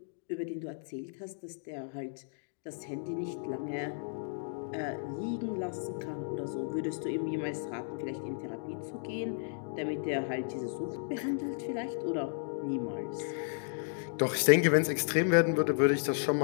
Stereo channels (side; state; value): right; silent; digital silence